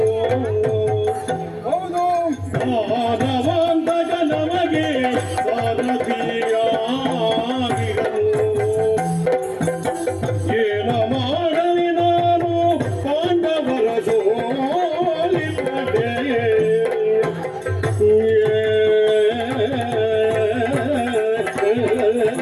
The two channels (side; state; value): both; identical; correlation 1.00